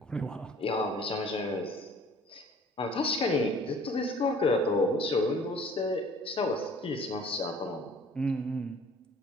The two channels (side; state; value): both; normal; correlation 0.51